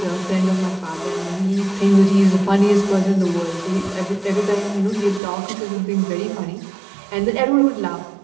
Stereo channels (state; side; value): drops out; left; at 5.2 s